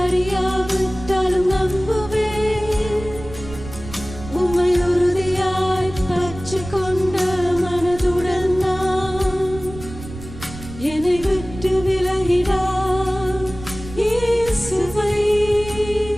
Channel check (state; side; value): noise; right; rumble, 13 dB below the sound